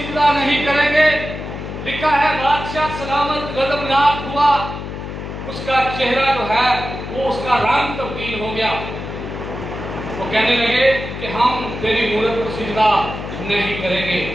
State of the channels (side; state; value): left; noise; hum, 8 dB below the sound